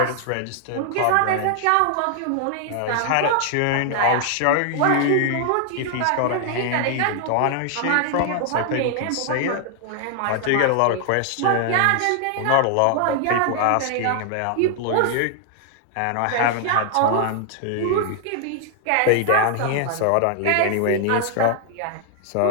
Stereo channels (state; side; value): different; both; correlation 0.00